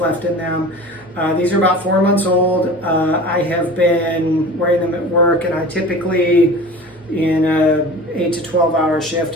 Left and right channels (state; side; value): normal; both; correlation 0.38